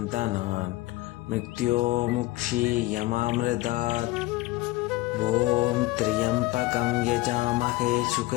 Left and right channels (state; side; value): quieter; right; 19.1 dB